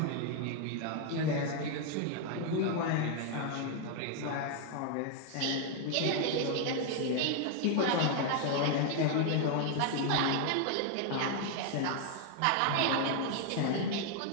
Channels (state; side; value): different; both; correlation 0.00